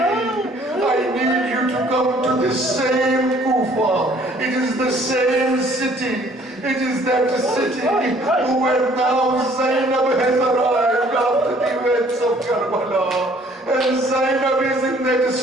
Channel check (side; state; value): both; normal; correlation 0.58